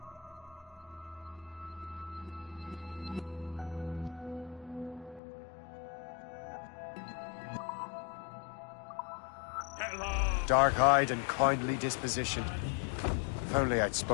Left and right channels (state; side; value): drops out; right; at 5.2 s